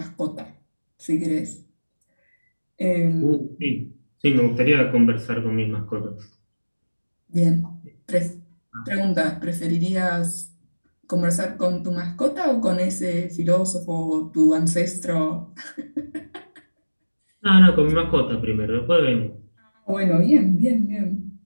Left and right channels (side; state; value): both; inverted; correlation -1.00